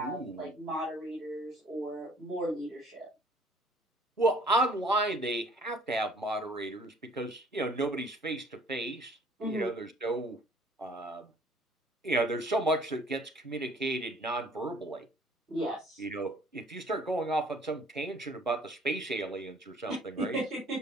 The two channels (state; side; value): normal; both; correlation 0.56